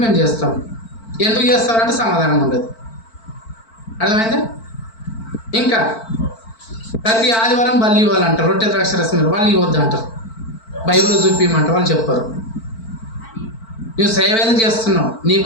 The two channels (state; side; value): late; right; 4.5 ms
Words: మేము చేస్తాం. ఎందుకు చేస్తారంటే సమాధానం ఉండదు. అర్థమైందా? ఇంకా ప్రతి ఆదివారం బల్లి ఇవ్వాలంటారు, రొట్టె ద్రాక్ష రసం వాళ్ళు ఇవ్వద్దు అంటారు. బైబిల్లో చూపించమంటారు, వాళ్ళు చెప్పరు. నువ్వు సేవ ఏదో చేస్తున్నావు, నీ